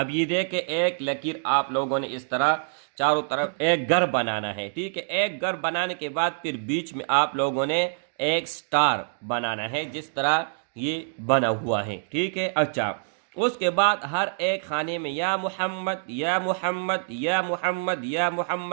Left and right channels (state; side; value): silent; left; digital silence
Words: یہ دیکھیں ایک لکیر آپ لوگوں نے اس طرح چاروں طرف ایک گھر بنانا ہے، ٹھیک ہے۔ ایک گھر بنانے کے بعد پھر بیچ میں آپ لوگوں نے ایک سٹار بنانا ہے، جس طرح یہ بنا ہوا ہے، ٹھیک ہے۔ اچھا اس کے بعد ہر ایک خانے میں یا محمد یا محمد یا محمد یا